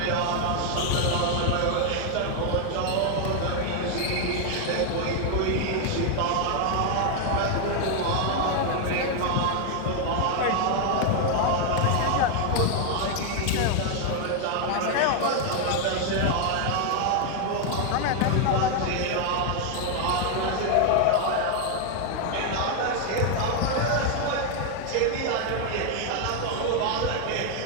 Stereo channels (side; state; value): both; different; correlation 0.00